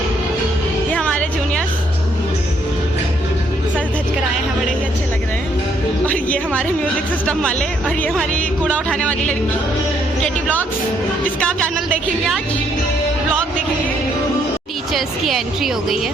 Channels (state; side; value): normal; both; correlation 0.70